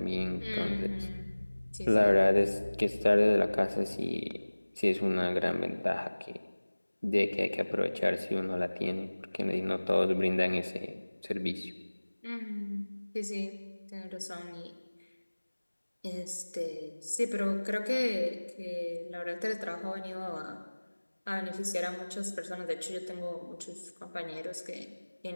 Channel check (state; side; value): inverted; both; correlation -1.00